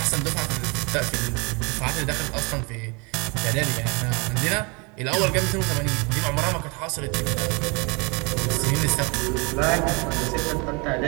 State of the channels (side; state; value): left; quieter; 29.9 dB